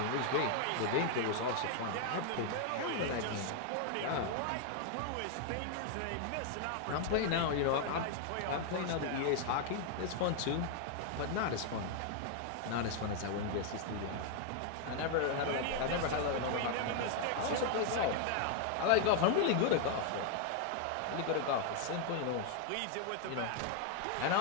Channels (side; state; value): both; different; correlation 0.00